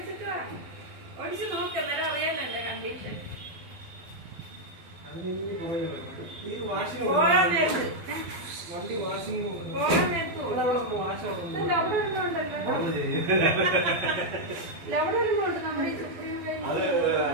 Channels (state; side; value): late; left; 12 ms